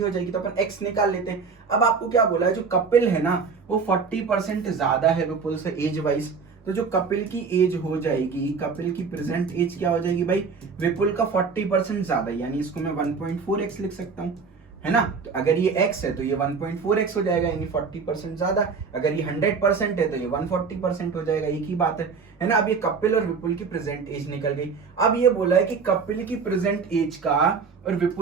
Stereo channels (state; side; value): quieter; left; 5.2 dB